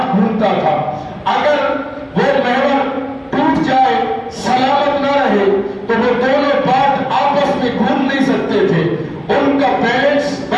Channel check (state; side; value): identical; both; correlation 1.00